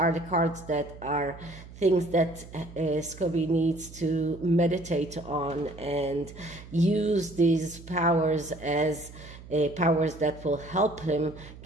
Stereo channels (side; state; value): right; noise; hum, 17 dB below the sound